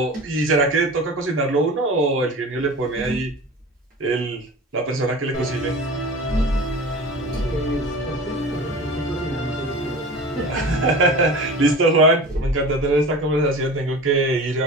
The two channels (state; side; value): normal; both; correlation 0.35